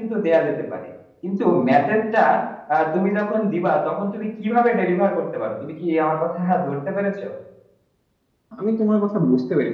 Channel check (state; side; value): identical; both; correlation 1.00